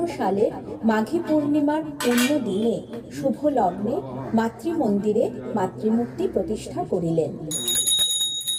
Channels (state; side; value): identical; both; correlation 1.00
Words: সালের মাঘী পূর্ণিমার পুণ্য দিনে শুভ লগ্নে মাতৃমন্দিরে মাতৃমূর্তি প্রতিষ্ঠা করিলেন।